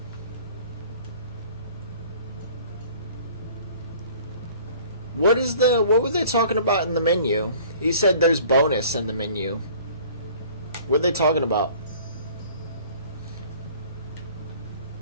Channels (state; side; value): inverted; both; correlation -0.50